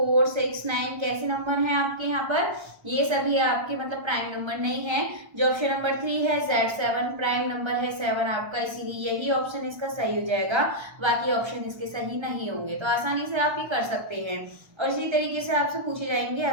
6 9 कैसे नंबर हैं आपके यहाँ पर, ये सभी आपके मतलब प्राइम नंबर नहीं है। जो ऑप्शन नंबर 3 है Z7 प्राइम नंबर है 7 आपका, इसीलिए यही ऑप्शन इसका सही हो जाएगा, बाकी ऑप्शन इसके सही नहीं होंगे। तो आसानी से आप ये कर सकते हैं और इसी तरीके से आपसे पूछे जाएंगे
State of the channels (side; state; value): left; late; 1.3 ms